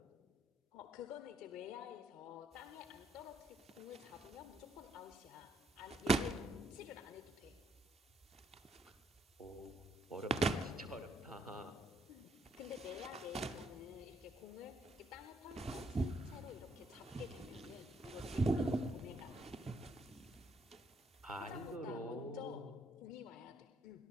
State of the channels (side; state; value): both; normal; correlation 0.72